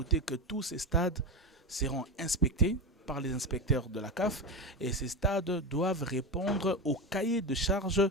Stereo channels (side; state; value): both; normal; correlation 0.18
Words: que tous ces stades seront inspectés par les inspecteurs de la CAF et ces stades doivent répondre au cahier de charge